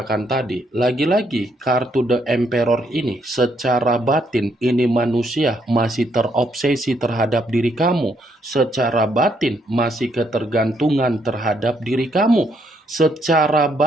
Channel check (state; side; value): normal; both; correlation 0.73